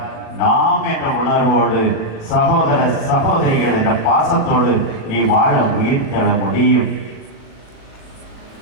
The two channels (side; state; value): right; late; 37 ms